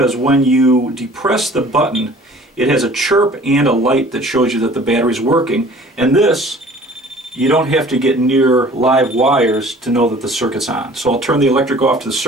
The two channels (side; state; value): both; normal; correlation 0.49